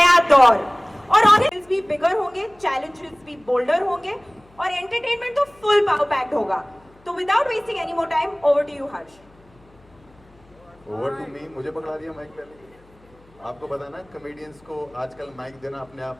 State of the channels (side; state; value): left; noise; hum, 29 dB below the sound